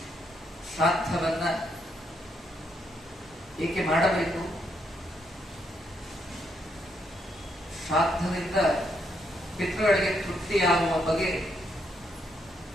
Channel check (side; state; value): both; normal; correlation 0.76